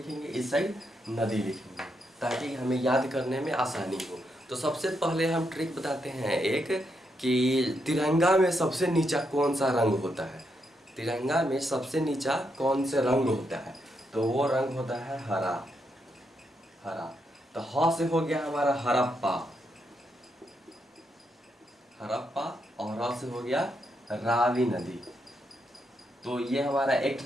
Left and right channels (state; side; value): normal; both; correlation 0.80